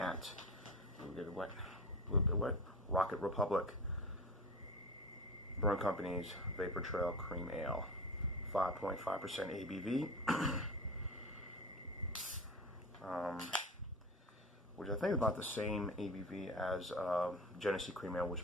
a little bit wet, Rocket Republic Brewing Company's Vapor Trail Cream Ale, 5.5% ABV, which I think is about the same ABV as Genesee Cream Ale, which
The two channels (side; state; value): both; normal; correlation 0.31